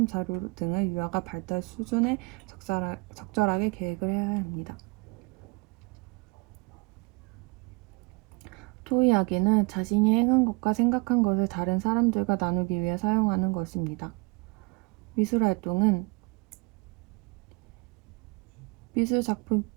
자료 등을 유아가 발달 수준에 적절하게 계획을 해야 합니다. 토의하기는 자신이 행한 것과 생각한 것을 다른 사람들과 나누기 위해 사용하는 것입니다. 미술활동은 미술 작품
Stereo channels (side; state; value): left; quieter; 28.5 dB